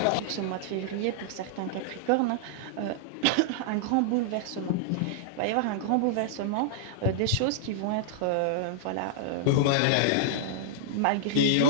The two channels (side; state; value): both; different; correlation -0.01